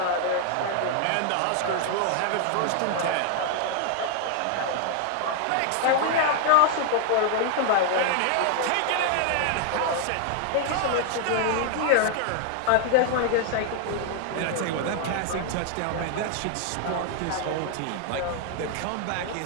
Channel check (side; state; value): both; different; correlation 0.00